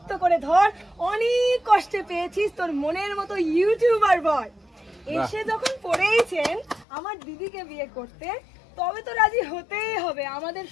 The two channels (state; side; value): drops out; right; at 6.9 s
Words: করে ধর, অনেক কষ্টে পেয়েছিস তোর মনের মতো ইউটিউবার বয়। এসে যখন পড়েইছেন আমার দিদিকে বিয়ে করতে, তবে তো রাজি হতেই হবে আমাদের